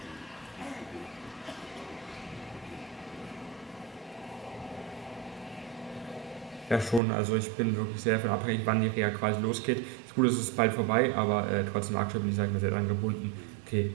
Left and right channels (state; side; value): drops out; left; at 7.0 s